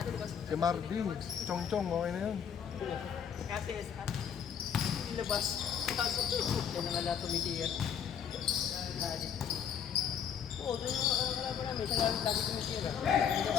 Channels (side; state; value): right; quieter; 8.0 dB